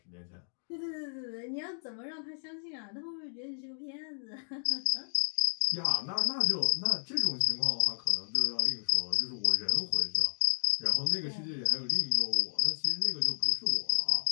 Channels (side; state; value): right; silent; digital silence